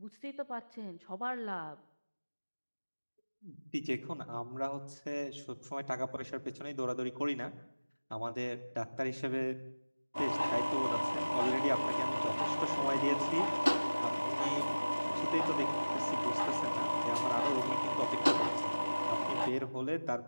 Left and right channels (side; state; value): both; inverted; correlation -1.00